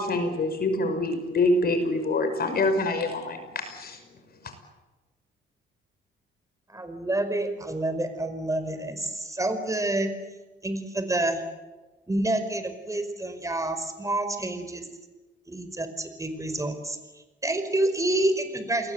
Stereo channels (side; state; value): both; normal; correlation 0.58